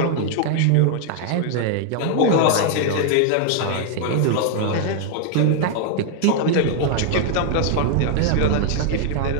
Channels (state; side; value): different; both; correlation 0.00